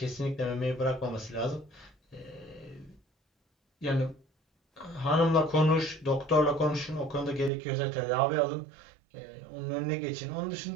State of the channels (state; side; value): drops out; left; at 7.5 s